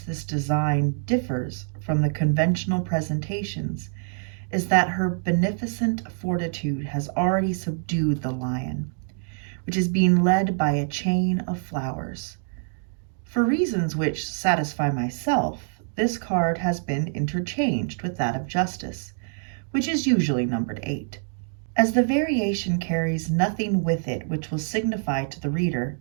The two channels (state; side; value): silent; left; digital silence